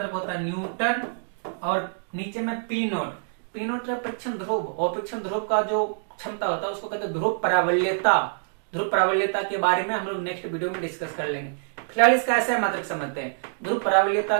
होता है न्यूटन, और नीचे में P0, P0 का परीक्षण ध्रुव, और परीक्षण ध्रुव का जो क्षमता होता है उसको कहते हैं ध्रुव परावल्यता। ध्रुव परावल्यता के बारे में हम लोग नेक्स्ट वीडियो में डिस्कस कर लेंगे। फिलहाल इसका SI मात्रक समझते हैं। ध्रुव परावल्यता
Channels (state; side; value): silent; left; digital silence